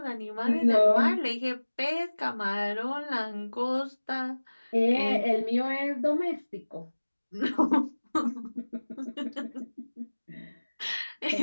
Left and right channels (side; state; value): both; inverted; correlation -1.00